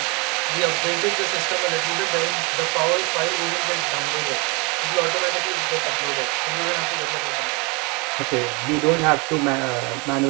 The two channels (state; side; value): quieter; left; 29.2 dB